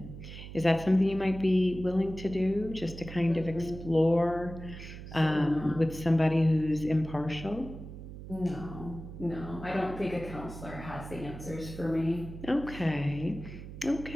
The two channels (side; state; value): right; noise; hum, 12 dB below the sound